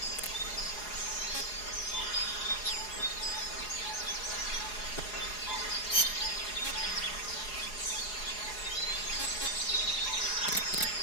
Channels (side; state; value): right; late; 4.8 ms